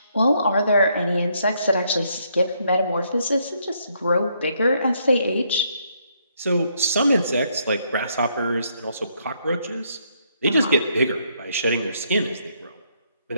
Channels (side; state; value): both; inverted; correlation -0.73